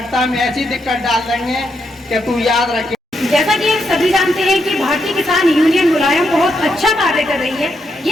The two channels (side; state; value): both; normal; correlation 0.81